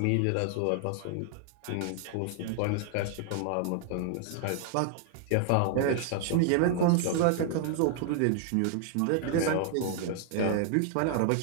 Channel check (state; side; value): different; both; correlation -0.01